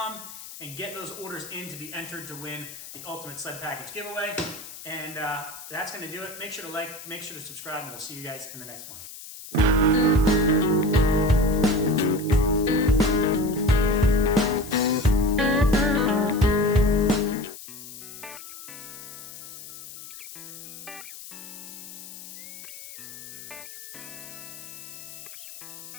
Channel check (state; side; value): noise; left; hiss, 14 dB below the sound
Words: and get those orders in to be entered to win the Ultimate Sled Package giveaway. And that's going to do it. Make sure to like, make sure to subscribe, and we'll see you guys in the next one.